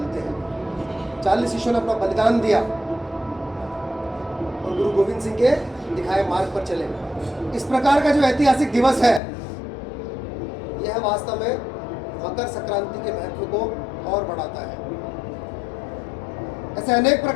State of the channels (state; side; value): drops out; right; at 9.2 s